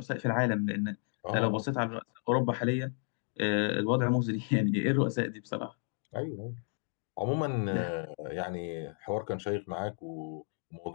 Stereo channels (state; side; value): silent; right; 56 dB below the other